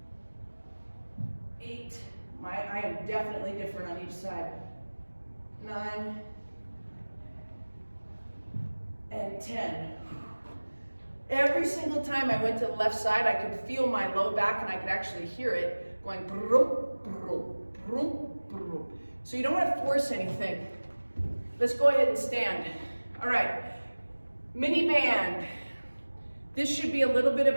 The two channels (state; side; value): inverted; both; correlation -1.00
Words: 8, I am definitely different on each side. 9, and 10. Every single time I went to the left side, I could feel my low back and I could actually hear it going brum, brum, brum, brum. So you don't want to force anything. Let's go ahead and stand. All right, mini band. This should be a little bit of